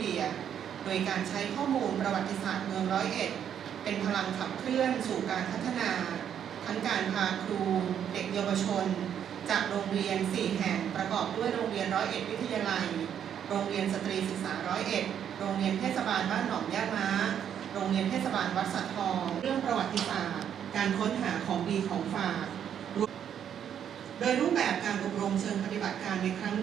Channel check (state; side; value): quieter; left; 9.0 dB